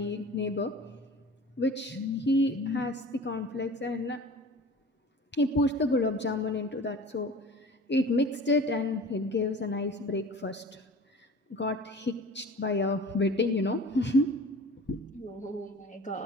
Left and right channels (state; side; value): normal; both; correlation 0.41